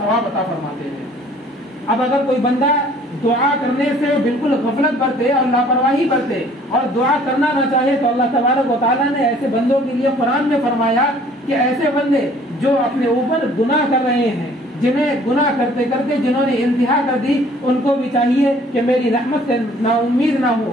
عطا فرماتے ہیں. اب اگر کوئی بندہ دعا کرنے سے بالکل غفلت برتے اور لاپرواہی برتے اور دعا کرنا نہ چاہے تو اللہ تبارک و تعالیٰ نے ایسے بندوں کے لیے قرآن میں فرمایا کہ ایسے بندے جو اپنے اوپر گناہ کر رہے ہیں، جنہیں گناہ کرتے کرتے جنہوں نے انتہا کر دی، ان کو بھی چاہیے کہ میری رحمت سے نا امید نہ ہو.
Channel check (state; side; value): normal; both; correlation 0.55